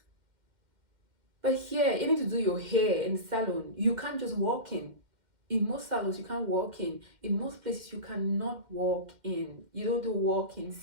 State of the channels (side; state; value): left; late; 2.1 ms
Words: But here, even to do your hair in the salon, you can't just walk in. In most salons, you can't walk in. In most places, you cannot walk in. You don't do walk-ins